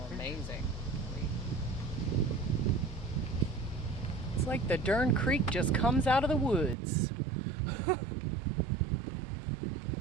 amazing. It's like the darn creek just comes out of the woods.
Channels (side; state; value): left; drops out; at 6.8 s